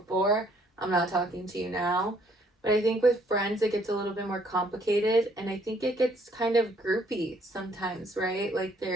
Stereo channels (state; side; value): normal; both; correlation 0.65